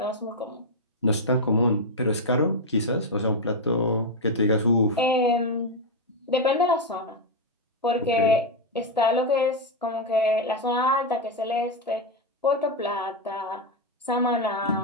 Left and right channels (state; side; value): normal; both; correlation 0.03